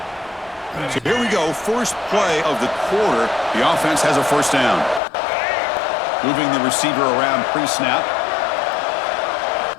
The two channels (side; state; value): right; drops out; at 5.0 s